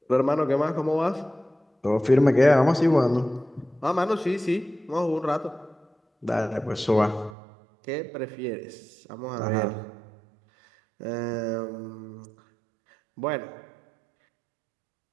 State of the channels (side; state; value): left; drops out; at 7.4 s